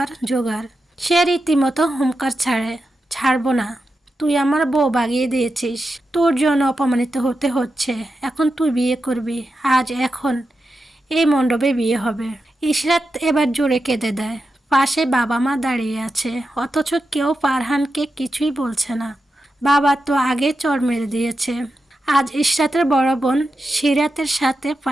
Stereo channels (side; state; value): both; normal; correlation 0.89